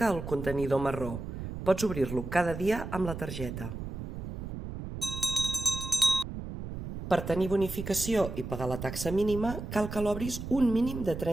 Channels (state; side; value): noise; right; rumble, 7 dB below the sound